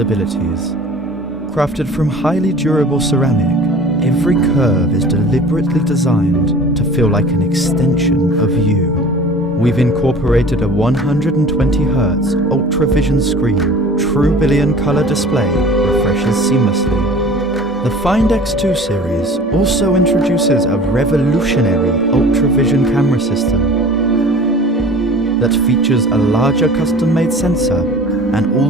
Crafted from highly durable ceramic, every curve is deliberately designed to feel like an extension of you. We've incorporated a 120Hz ultra-vision screen, true billion color display refreshes seamlessly. The Find X2 series also introduces a revolutionary ultra-vision camera system that features a larger custom-made sensor and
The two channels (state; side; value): normal; both; correlation 0.43